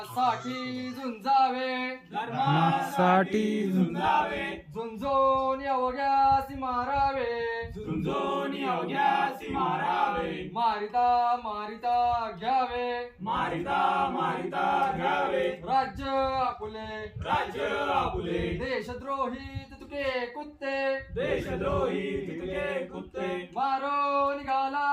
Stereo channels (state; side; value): identical; both; correlation 1.00